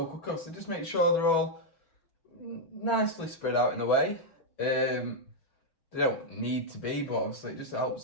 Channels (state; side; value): late; right; 6.1 ms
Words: cooker. So just make sure they're all nicely spread out in a way. They don't need to be, but obviously it just